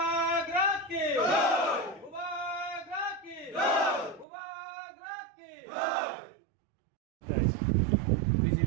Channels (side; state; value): left; drops out; at 4.2 s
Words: কি বুবাগ্রা কি বুবাগ্রা কি